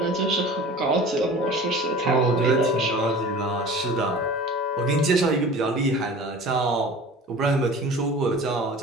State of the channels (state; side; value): normal; both; correlation 0.40